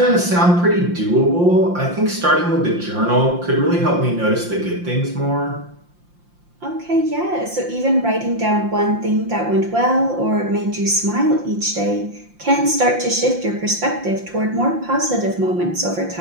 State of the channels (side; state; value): left; late; 5.7 ms